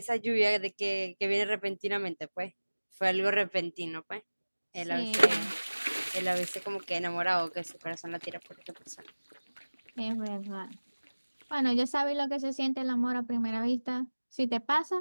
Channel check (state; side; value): inverted; both; correlation -1.00